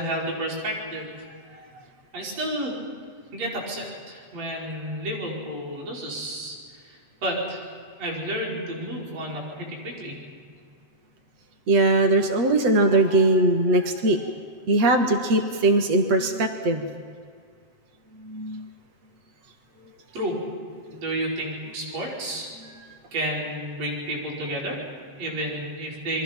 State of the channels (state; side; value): late; left; 7.8 ms